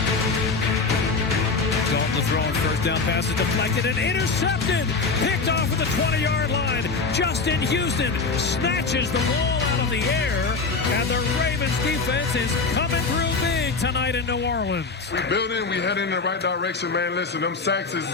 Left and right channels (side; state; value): right; quieter; 4.3 dB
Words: Dalton throwing first down pass is deflected and intercepted. Picked off at the 20-yard line. Justin Houston snatches the ball out of the air, and the Ravens defense is coming through big tonight in New Orleans. We building, we heading in the right direction, man. Listen, them sacks is